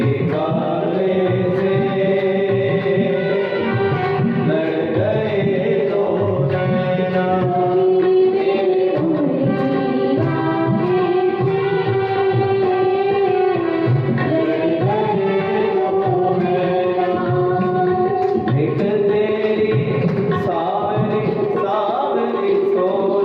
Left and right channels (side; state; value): both; identical; correlation 1.00